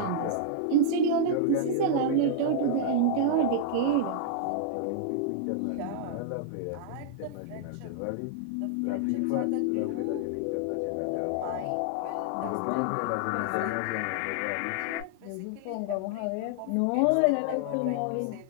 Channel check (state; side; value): different; both; correlation -0.01